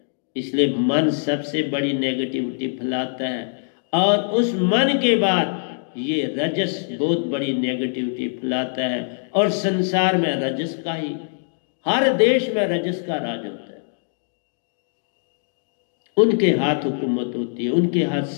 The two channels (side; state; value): right; silent; digital silence